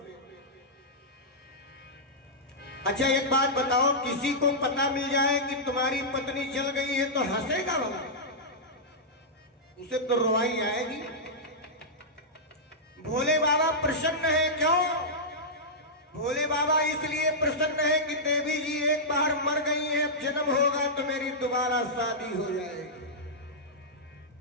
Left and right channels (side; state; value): both; normal; correlation -0.11